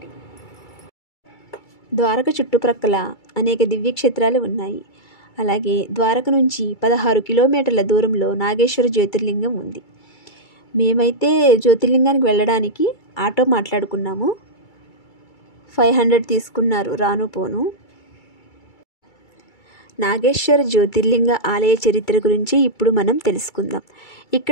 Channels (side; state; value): right; late; 2.3 ms